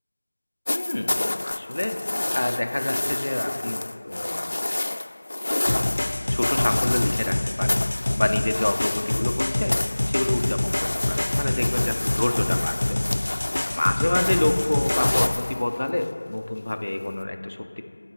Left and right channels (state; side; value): inverted; both; correlation -1.00